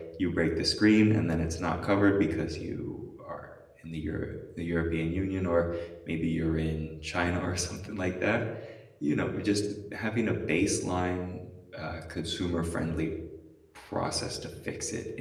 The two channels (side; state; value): both; identical; correlation 1.00